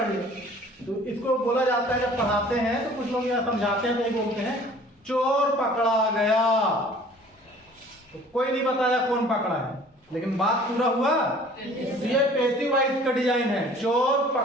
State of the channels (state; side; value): normal; both; correlation 0.50